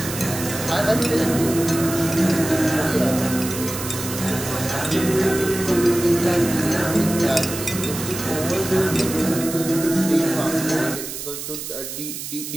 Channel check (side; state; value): right; noise; hiss, 8 dB below the sound